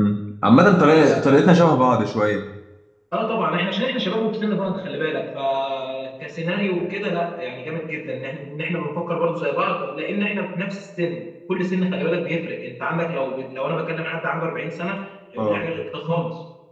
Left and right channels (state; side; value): identical; both; correlation 1.00